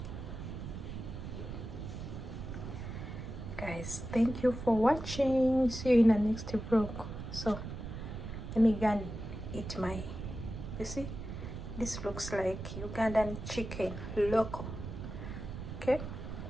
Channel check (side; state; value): right; noise; rumble, 8 dB below the sound